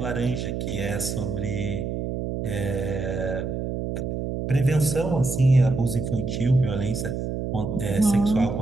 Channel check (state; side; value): noise; right; hum, 3 dB below the sound